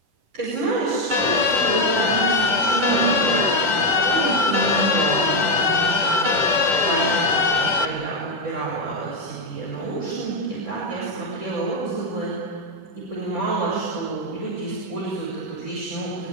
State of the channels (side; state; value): left; late; 10 ms